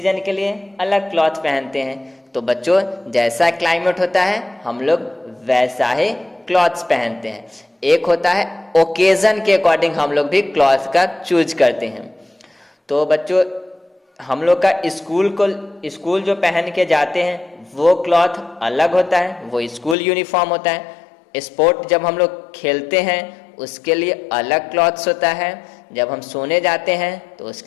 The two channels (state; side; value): drops out; right; at 20.0 s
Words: के लिए अलग क्लॉथ पहनते हैं। तो बच्चों जैसा क्लाइमेट होता है हम लोग वैसा ही क्लॉथ्स पहनते हैं। एक होता है ओकेजन के अकॉर्डिंग हम लोग भी क्लॉथ का चूज करते हैं। तो बच्चों हम लोग का स्कूल जो पहन के जाते हैं वो क्लॉथ अलग होता है, वो स्कूल यूनिफॉर्म होता है। स्पोर्ट जब हम लोग खेलते हैं उसके लिए अलग क्लॉथ्स होता है। जब हम सोने जाते हैं तो